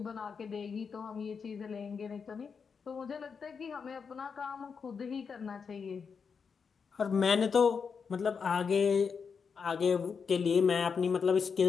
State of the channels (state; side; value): quieter; right; 5.9 dB